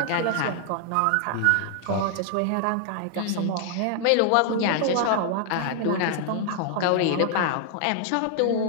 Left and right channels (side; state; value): both; different; correlation 0.00